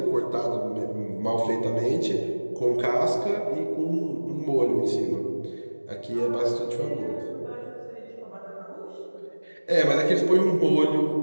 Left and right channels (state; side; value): inverted; both; correlation -1.00